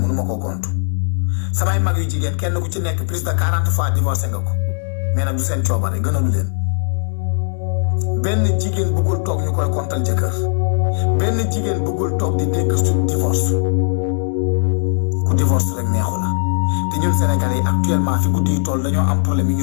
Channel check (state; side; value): silent; right; digital silence